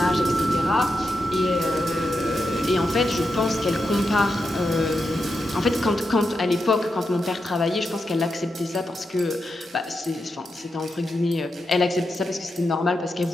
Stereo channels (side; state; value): both; normal; correlation 0.86